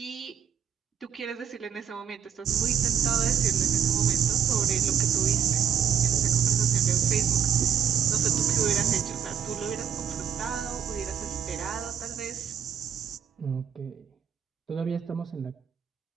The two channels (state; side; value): quieter; left; 8.1 dB